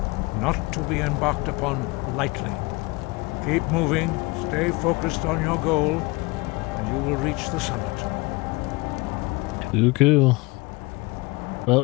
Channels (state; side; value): quieter; right; 24.7 dB